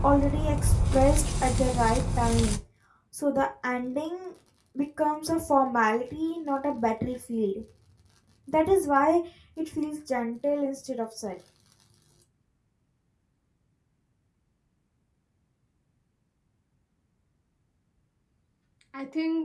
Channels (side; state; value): both; identical; correlation 1.00